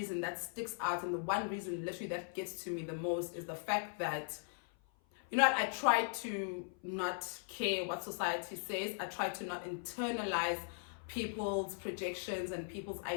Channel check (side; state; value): right; silent; 52 dB below the other